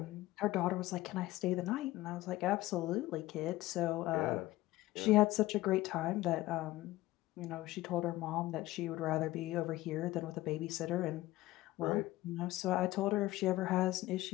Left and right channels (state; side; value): quieter; right; 17.5 dB